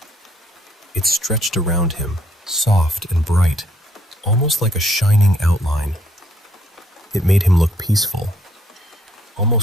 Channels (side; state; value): both; normal; correlation 0.68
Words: It stretched around him, soft and bright, almost like a shining outline. It made him look peaceful,